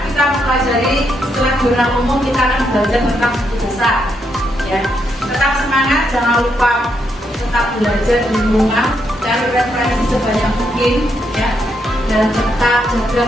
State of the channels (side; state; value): both; normal; correlation 0.78